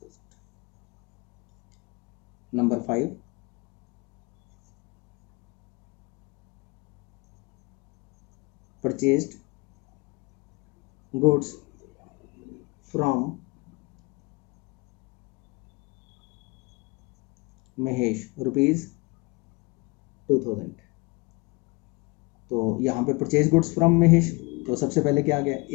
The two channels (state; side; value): quieter; right; 26.0 dB